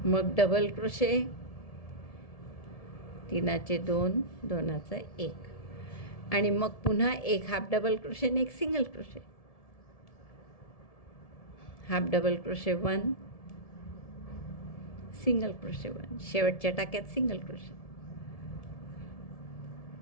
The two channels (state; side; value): late; right; 1.7 ms